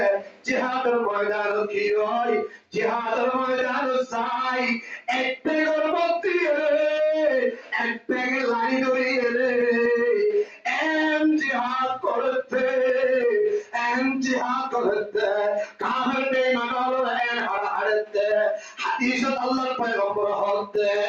জিহাদের ময়দান কি হয় জিহাদের ময়দান চাই একটাকে গর্বতি একটাকে লাড়ি ধরিয়ে জিহাদ করতে কাফের বেঈমানরা হারাতে হাদিসত আল্লাহর পয়গম্বর হতে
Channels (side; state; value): both; identical; correlation 1.00